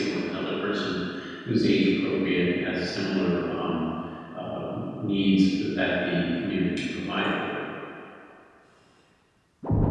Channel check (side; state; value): both; identical; correlation 1.00